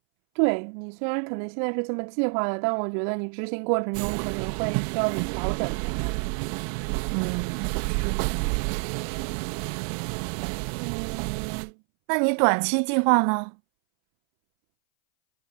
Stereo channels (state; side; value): silent; left; 60 dB below the other